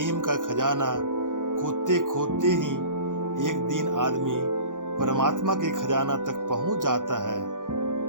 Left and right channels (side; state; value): left; late; 0.88 ms